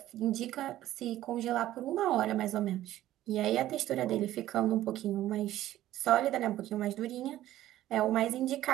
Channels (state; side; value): quieter; left; 14.0 dB